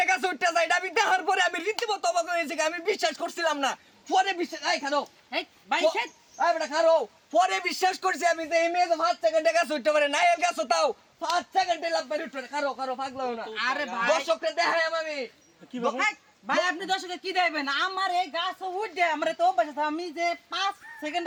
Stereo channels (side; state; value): both; identical; correlation 1.00